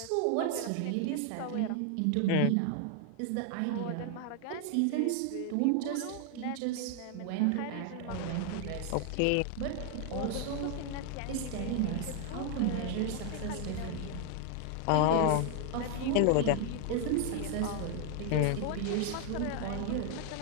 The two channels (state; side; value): different; both; correlation 0.00